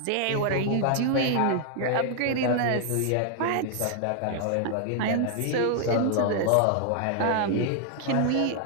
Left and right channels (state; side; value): different; both; correlation 0.00